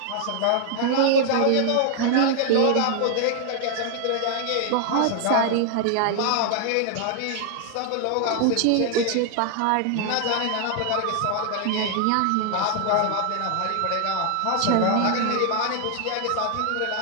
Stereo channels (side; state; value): both; different; correlation 0.00